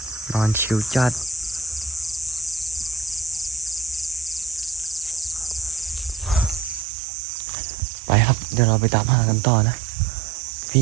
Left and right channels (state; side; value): drops out; left; at 6.9 s